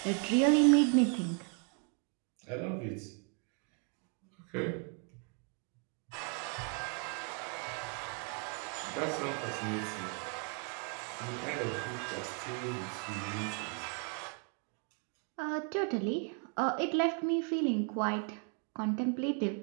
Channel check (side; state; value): left; quieter; 37.6 dB